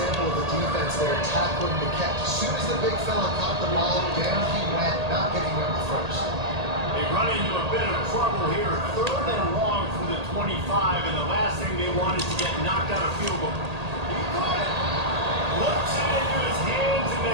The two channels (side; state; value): left; late; 1.8 ms